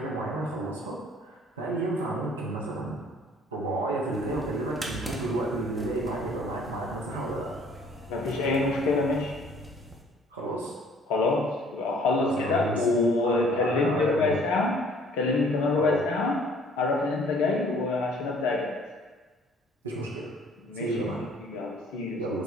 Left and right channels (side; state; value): both; normal; correlation 0.56